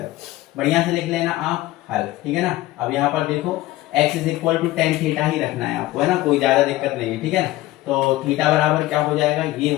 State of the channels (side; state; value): right; quieter; 16.9 dB